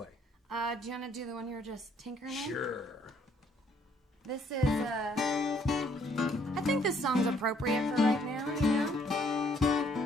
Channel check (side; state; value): both; normal; correlation 0.65